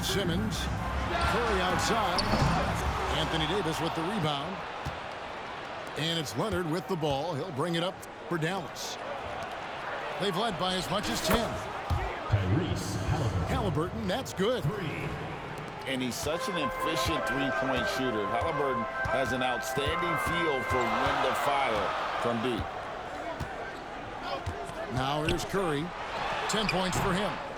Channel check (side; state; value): both; identical; correlation 1.00